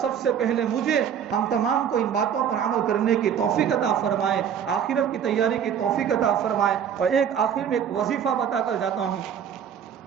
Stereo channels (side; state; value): left; quieter; 8.4 dB